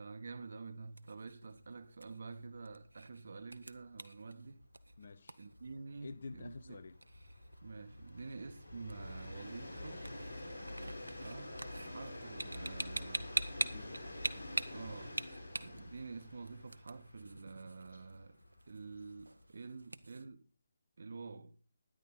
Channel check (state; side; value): inverted; both; correlation -0.95